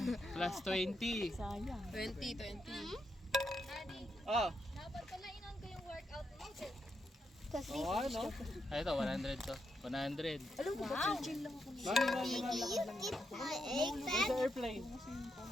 Plus 20. 20. Oh. Dapat pala inon ko yung workout mo. Oo, ano? Ay, ito, 100 to. 100. Alam mo ba, chill lang ako. Mami, sa airplane.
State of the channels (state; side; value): normal; both; correlation 0.82